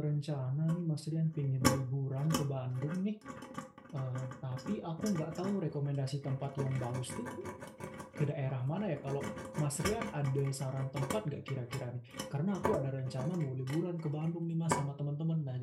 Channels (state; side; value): identical; both; correlation 1.00